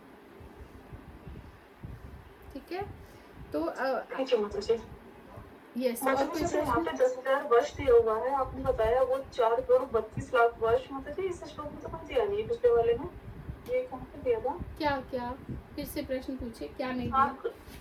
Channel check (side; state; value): both; identical; correlation 1.00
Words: ठीक है? तो यस, और मतलब जैसे यहाँ पे 10,000 वर्ष दिया हुआ है, आपने बताया वो 4 करोड़ 32 लाख वर्ष, मतलब इस श्लोक में तो कुछ दिया नहीं है, पिछले वाले में ये कहाँ पे दिया था? क्या फिर से प्रश्न पूछे, क्या नहीं दिया?